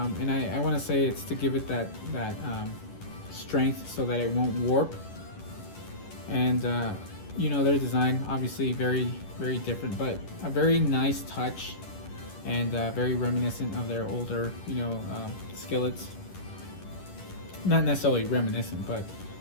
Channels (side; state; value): right; late; 10 ms